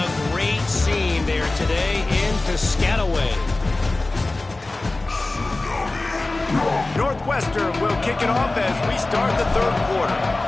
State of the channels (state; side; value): quieter; right; 3.0 dB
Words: great scene there today in Piscataway. Northwestern will kick it off as we start the third quarter.